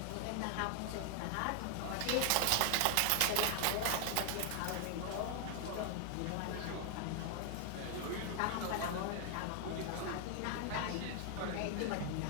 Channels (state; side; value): different; both; correlation 0.00